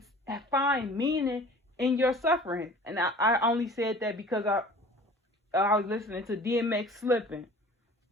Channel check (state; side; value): normal; both; correlation 0.45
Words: find meaning in your suffering. And I only said that because I was listening to DMX Slipping.